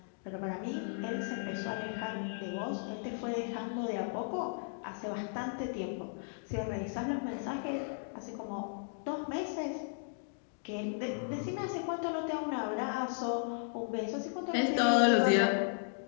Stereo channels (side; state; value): right; silent; digital silence